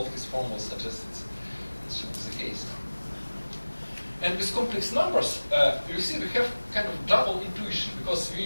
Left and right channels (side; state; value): both; inverted; correlation -1.00